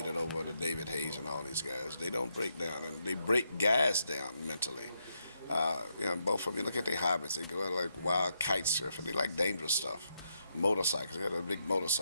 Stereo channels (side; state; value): both; inverted; correlation -0.80